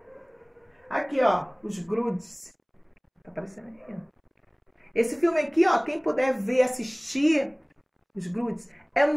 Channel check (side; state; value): both; identical; correlation 1.00